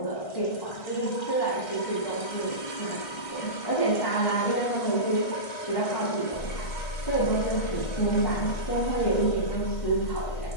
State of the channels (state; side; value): late; right; 1.6 ms